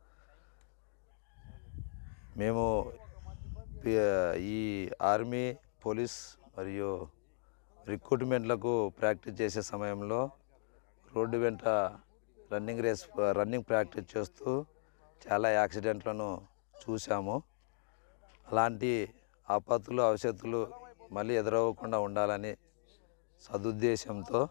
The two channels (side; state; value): right; silent; digital silence